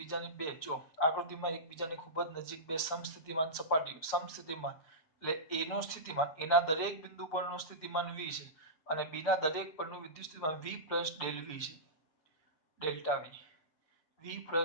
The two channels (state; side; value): late; right; 6.3 ms